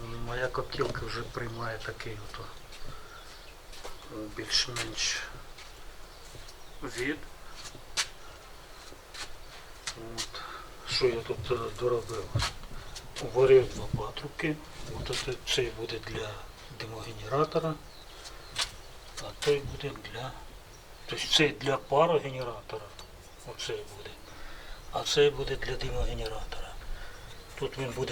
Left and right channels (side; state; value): both; identical; correlation 1.00